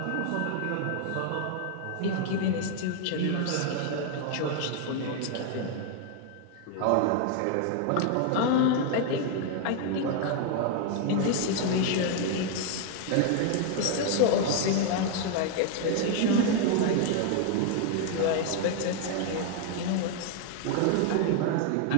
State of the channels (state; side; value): different; both; correlation 0.00